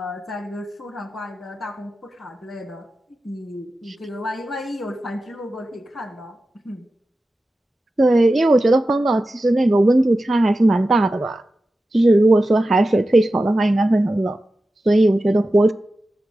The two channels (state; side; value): normal; both; correlation 0.93